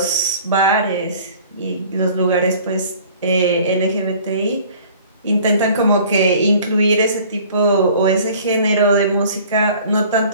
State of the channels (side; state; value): both; inverted; correlation -0.50